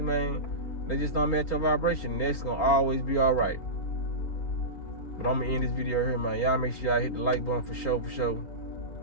they just don't match your vibration. That's gonna always be all right. But I'm gonna end this video here, man. Y'all make sure y'all hit the like button for sure.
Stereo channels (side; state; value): right; late; 3.8 ms